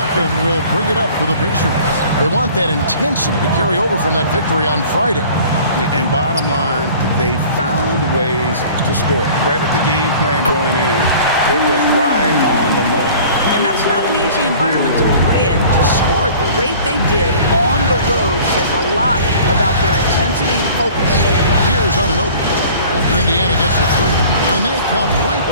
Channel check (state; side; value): inverted; both; correlation -0.47